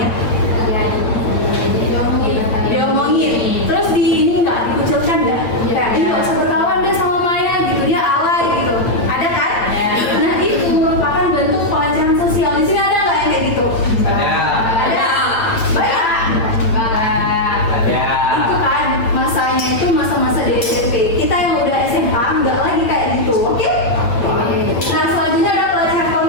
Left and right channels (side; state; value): right; late; 8.5 ms